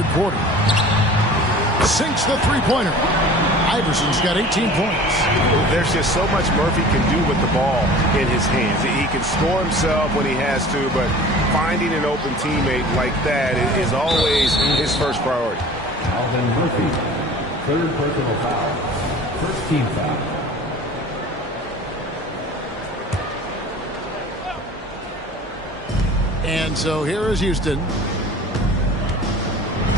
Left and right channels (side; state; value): both; normal; correlation 0.43